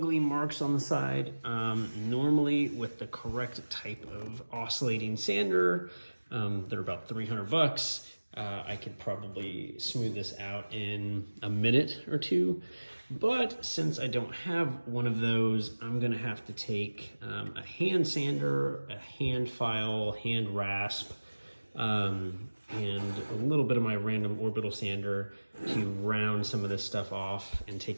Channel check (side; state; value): both; inverted; correlation -1.00